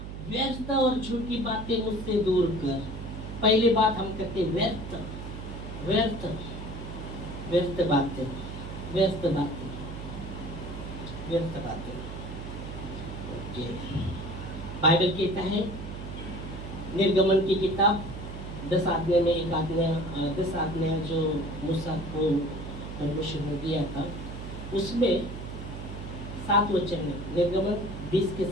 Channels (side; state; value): right; noise; hum, 9 dB below the sound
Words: व्यर्थ और झूठी बातें मुझसे दूर कर। पहली बात हम कहते व्यर्थ बातें। ओके। बाइबल कहता है निर्गमन की किताब 10 आज्ञा में एक आज्ञा 10 आज्ञा जो मूसा को परमेश्वर ने दिया था, उसमें 7 वचन में निर्गमन 20 के